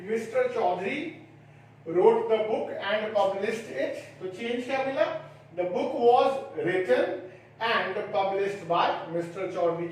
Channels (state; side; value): identical; both; correlation 1.00